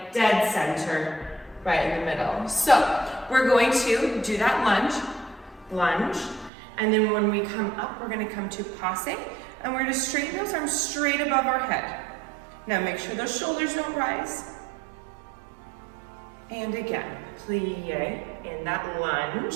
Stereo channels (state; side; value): drops out; left; at 6.5 s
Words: dead center, right in the middle. So we're going to do that lunge. And then when we come up, we're gonna come to passe, and we're gonna straighten those arms straight above our head. Now make sure those shoulders don't rise. And again, plie in that